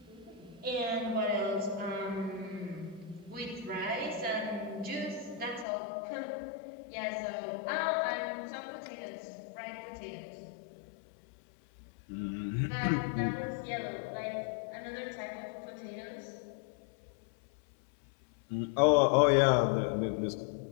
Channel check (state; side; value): drops out; right; at 5.7 s